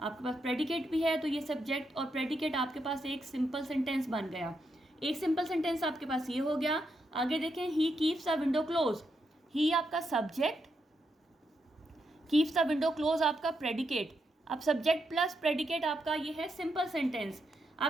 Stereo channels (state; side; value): normal; both; correlation 0.82